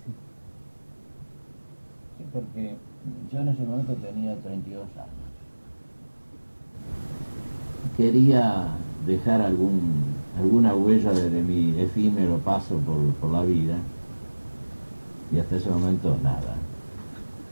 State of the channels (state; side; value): inverted; both; correlation -1.00